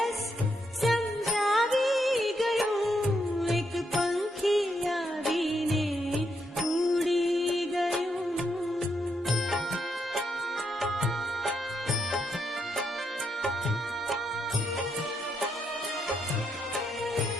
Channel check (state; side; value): normal; both; correlation 0.79